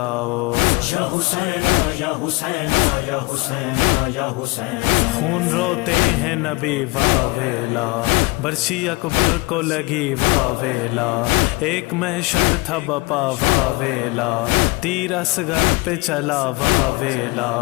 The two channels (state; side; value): quieter; right; 23.4 dB